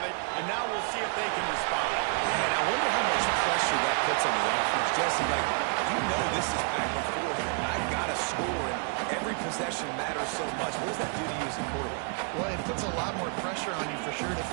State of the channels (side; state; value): left; quieter; 38.9 dB